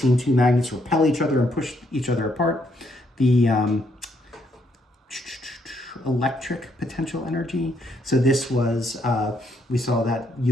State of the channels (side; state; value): both; normal; correlation 0.73